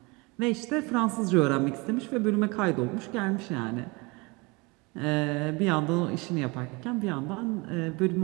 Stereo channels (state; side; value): quieter; left; 26.7 dB